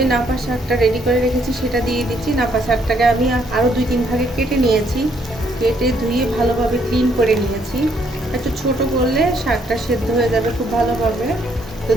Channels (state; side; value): normal; both; correlation 0.70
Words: নাপা শাকটা রেডি করে রেখেছি সেটা দিয়ে দিচ্ছি। নাপা শাকটাকে আমি আরও 2-3 ভাগে কেটে নিয়েছি, কেটে ধুয়ে ভালোভাবে ক্লিন করে নিয়েছি। একটু ছোট করলে শাকটা সেদ্ধ হয়ে যাবে খুব ভালোভাবে। তো